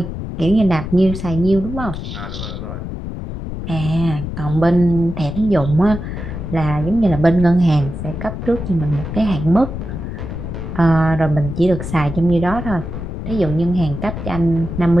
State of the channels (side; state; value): left; noise; rumble, 7 dB below the sound